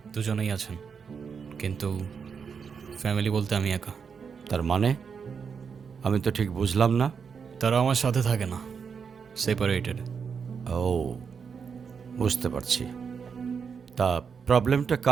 দুজনেই আছেন, কিন্তু ফ্যামিলি বলতে আমি একা। তার মানে আমি তো ঠিক বুঝলাম না। তারা আমার সাথে থাকে না, সেপারেটেড। ও বুঝতে পারছি। তা প্রবলেমটা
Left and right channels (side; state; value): left; quieter; 6.2 dB